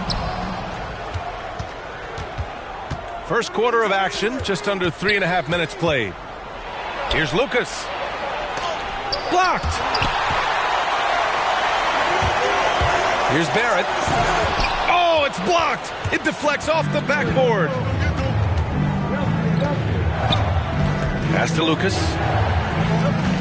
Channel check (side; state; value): both; identical; correlation 1.00